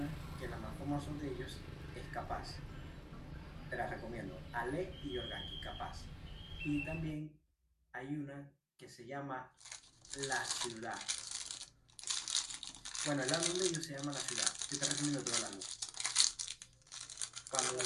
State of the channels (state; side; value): identical; both; correlation 1.00